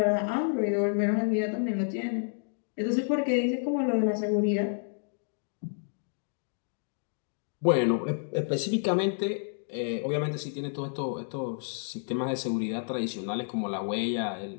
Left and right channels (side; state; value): right; silent; digital silence